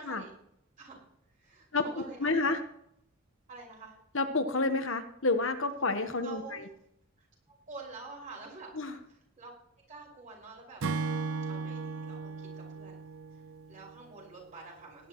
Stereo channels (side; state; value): both; normal; correlation 0.00